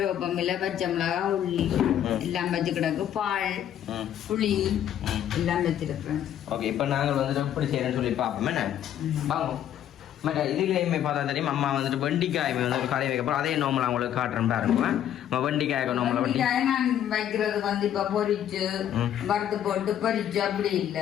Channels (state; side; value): quieter; right; 10.6 dB